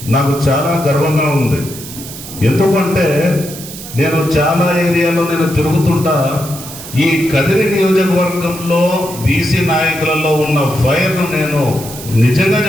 నాకు చాలా గర్వంగా ఉంది. ఎందుకంటే నేను చాలా ఏరియాలో తిరుగుతుంటా. ఈ కదిరి నియోజకవర్గంలో బీసీ నాయకులలో ఉన్న ఫైర్ను నేను నిజంగా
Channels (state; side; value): noise; right; hiss, 13 dB below the sound